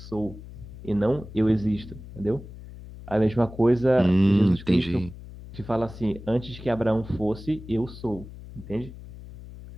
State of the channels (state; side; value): noise; left; hum, 15 dB below the sound